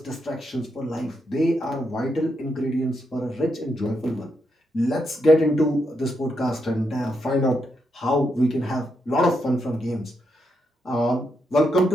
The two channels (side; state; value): both; normal; correlation 0.81